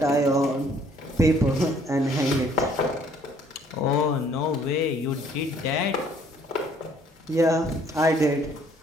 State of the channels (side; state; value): both; normal; correlation 0.61